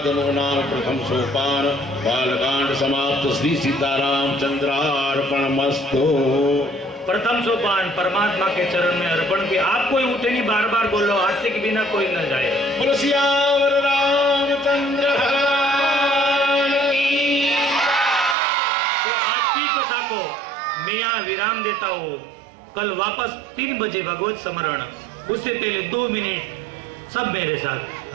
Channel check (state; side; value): drops out; left; at 18.4 s